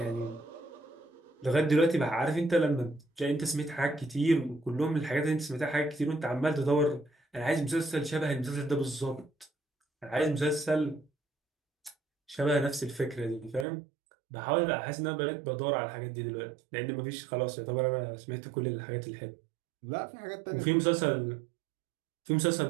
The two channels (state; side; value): drops out; left; at 13.7 s